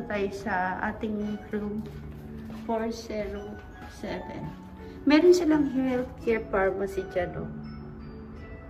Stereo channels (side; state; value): both; identical; correlation 1.00